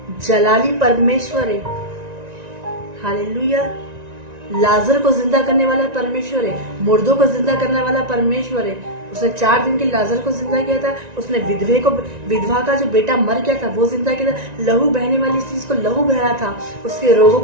जलाली परमेश्वर है। हालेलुया। लाजर को जिंदा करने वाला परमेश्वर है, मुर्दों को जिंदा करने वाला परमेश्वर है। उसने 4 दिन के लाजर को जिंदा किया था, उसने विधवा का जो बेटा मर गया था वो जिंदा किया था, लहू बहने वाली चीज को लहू बहा था, उसके रोगों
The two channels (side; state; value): left; late; 1.9 ms